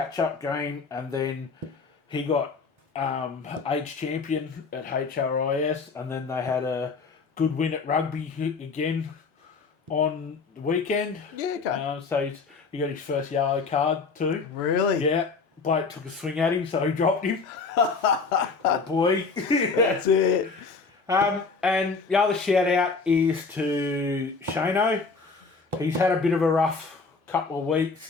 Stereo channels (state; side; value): quieter; right; 4.5 dB